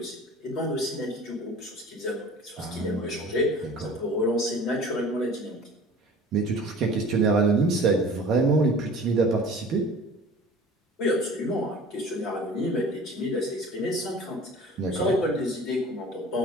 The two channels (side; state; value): both; normal; correlation 0.44